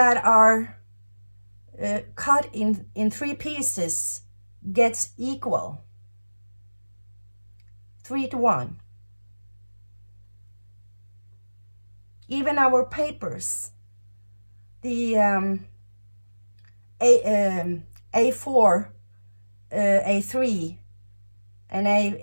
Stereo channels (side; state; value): both; inverted; correlation -1.00